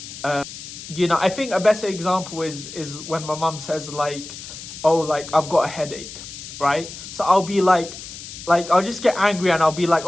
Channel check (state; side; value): noise; left; hiss, 12 dB below the sound